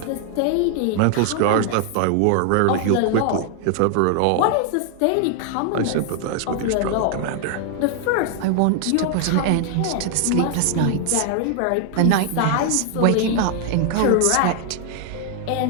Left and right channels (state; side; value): different; both; correlation 0.00